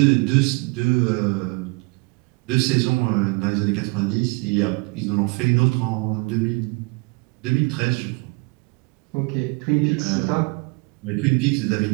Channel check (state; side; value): quieter; left; 28.9 dB